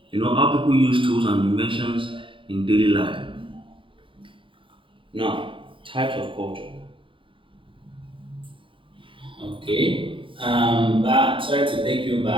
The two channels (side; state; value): left; late; 0.25 ms